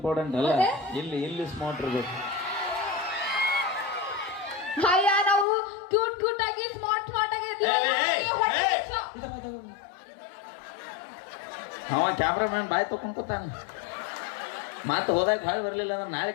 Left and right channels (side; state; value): right; drops out; at 5.5 s